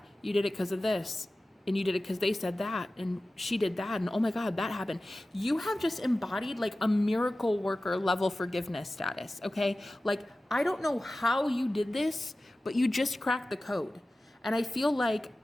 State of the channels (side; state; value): both; normal; correlation 0.96